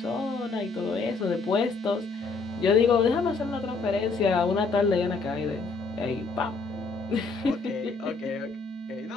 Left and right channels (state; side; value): quieter; right; 4.1 dB